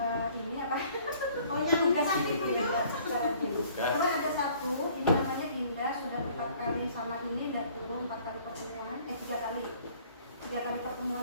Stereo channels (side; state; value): both; inverted; correlation -0.56